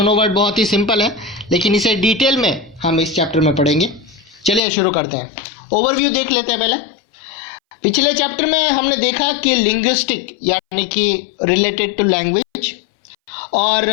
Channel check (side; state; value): right; drops out; at 4.6 s